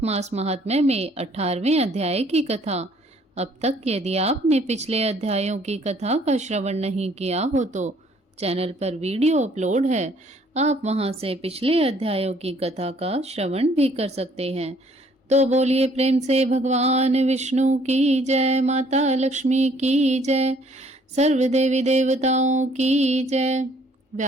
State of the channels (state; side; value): normal; both; correlation 0.61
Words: मास महात्म्य में 18वें अध्याय की कथा। अब तक यदि आपने पिछले अध्यायों की कथा का श्रवण नहीं किया हो तो चैनल पर वीडियो अपलोड है, आप वहां से पिछले अध्यायों की कथा का श्रवण भी कर सकते हैं। तो बोलिए प्रेम से भगवान विष्णु की जय, माता लक्ष्मी की जय, सर्व देवी देवताओं की जय।